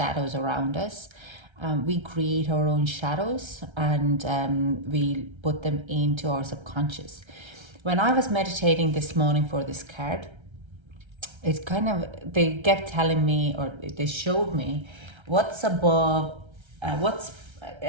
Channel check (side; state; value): left; late; 1.3 ms